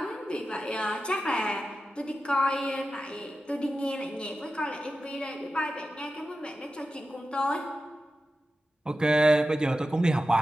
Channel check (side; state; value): both; normal; correlation 0.92